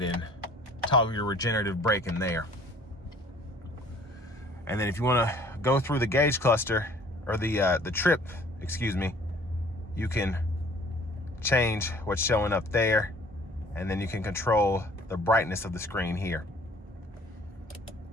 and toggle your regenerative braking there. And then if you want to go through the gauge cluster, or the trip, excuse me, you can change what's showing up there, and then you can control the brightness of the screen here.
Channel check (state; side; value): normal; both; correlation 0.54